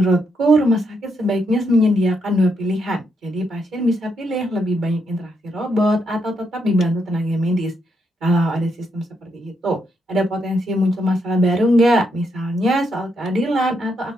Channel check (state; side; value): normal; both; correlation 0.79